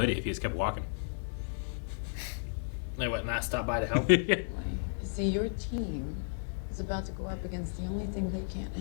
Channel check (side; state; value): right; silent; digital silence